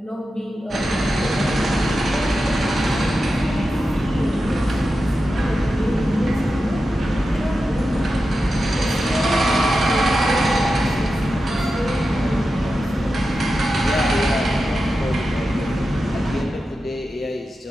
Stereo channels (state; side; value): normal; both; correlation 0.91